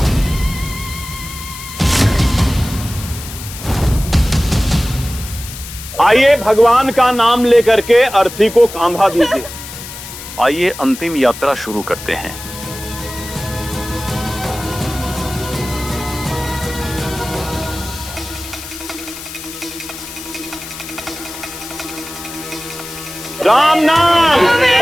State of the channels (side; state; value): left; noise; hiss, 12 dB below the sound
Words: आइए भगवान का नाम लेकर के अर्थी को कांधा दीजिए। आइए अंतिम यात्रा शुरू करते हैं। राम नाम,